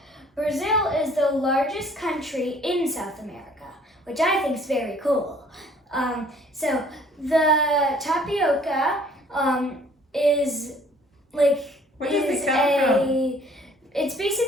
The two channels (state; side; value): normal; both; correlation 0.57